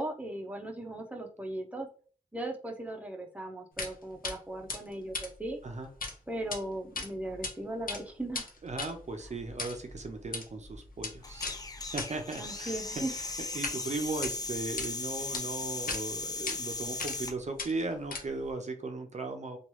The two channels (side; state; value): both; normal; correlation 0.45